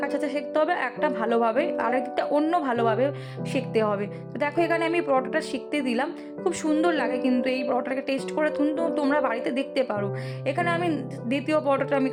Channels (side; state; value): both; identical; correlation 1.00